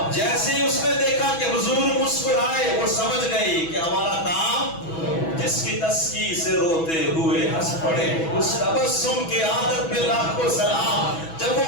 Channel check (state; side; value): late; right; 6.1 ms